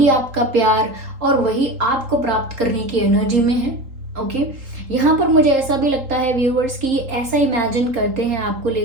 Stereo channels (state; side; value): late; left; 3.8 ms